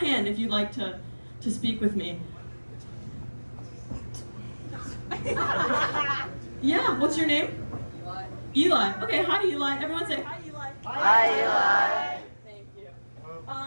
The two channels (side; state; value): both; inverted; correlation -1.00